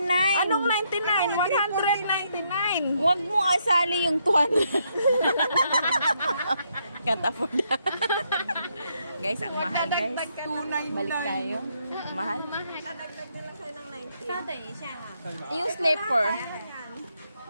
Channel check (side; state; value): both; inverted; correlation -0.76